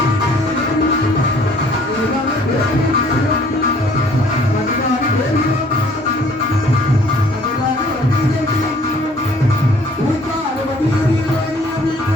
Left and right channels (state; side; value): normal; both; correlation 0.57